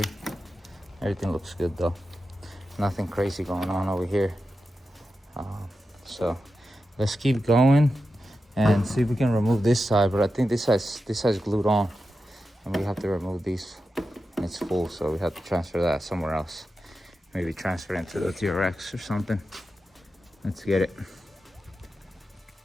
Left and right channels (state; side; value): normal; both; correlation 0.90